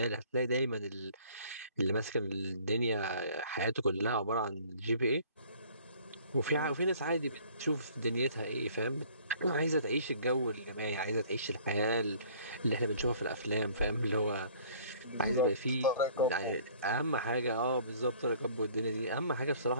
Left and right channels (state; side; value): inverted; both; correlation -0.54